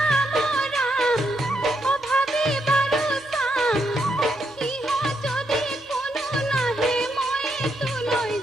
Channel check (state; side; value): normal; both; correlation 0.80